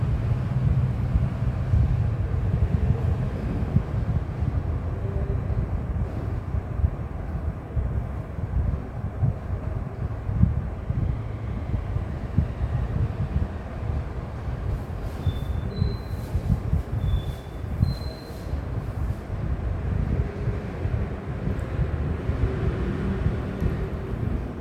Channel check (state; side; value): identical; both; correlation 1.00